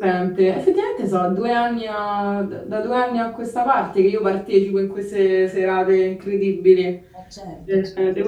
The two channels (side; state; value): both; identical; correlation 1.00